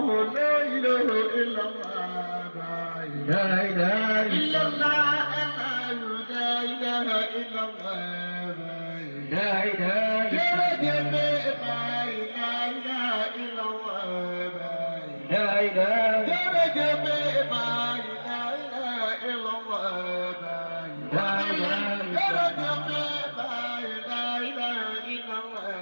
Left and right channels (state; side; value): inverted; both; correlation -1.00